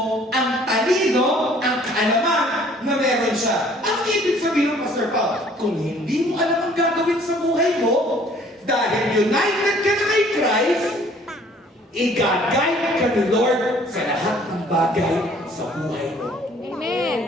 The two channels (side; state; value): both; normal; correlation 0.57